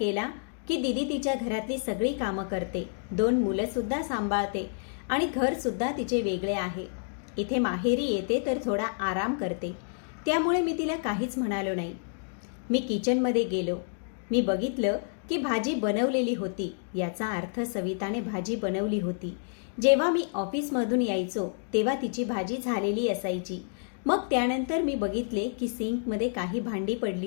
की दीदी तिच्या घरातली सगळी कामं करते, 2 मुलंसुद्धा सांभाळते आणि घरसुद्धा तिचे वेगळे आहे. इथे माहेरी येते तर थोडा आराम करते, त्यामुळे मी तिला काहीच म्हणालो नाही. मी किचनमध्ये गेलो. मी बघितलं की भाजी बनवलेली होती. याचा अर्थ सविताने भाजी बनवली होती. जेव्हा मी ऑफिसमधून यायचो तेव्हा तिची भाजी झालेली असायची. मग त्यानंतर मी बघितले की सिंकमध्ये काही भांडी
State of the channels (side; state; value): right; silent; digital silence